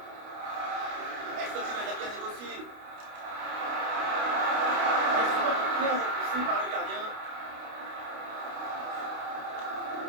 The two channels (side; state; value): left; late; 29 ms